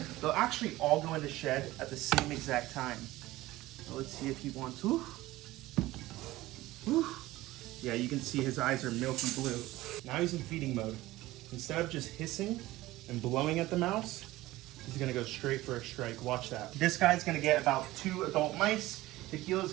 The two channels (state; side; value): quieter; left; 17.6 dB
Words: They'll actually all go into shed at the same exact time. So let's see if he wants to. Yeah, you can see his eyes are milky blue. Now he's in feeding mode. Instead of just hissing and blowing at the mouse, he's gonna go straight for a strike. Watch that. This guy's gonna get about 2 adult mice. Tequila's